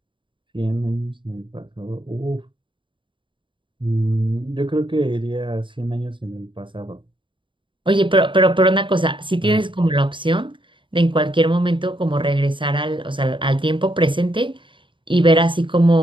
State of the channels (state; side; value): late; left; 0.24 ms